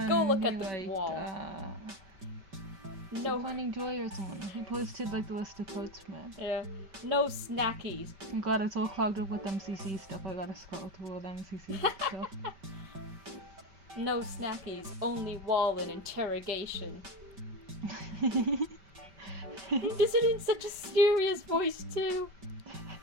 Go look who at the liked, wall. No. Finding Joy or someone. He posted like the list of quotes from it. Yeah. No snackies. Oh god, it's all clogged up with MCC stuff. I gotta scroll through all the MCC stuff. No snackies. Only wall and interrogation. He does it in such a serious voice too.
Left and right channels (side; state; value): left; late; 5.2 ms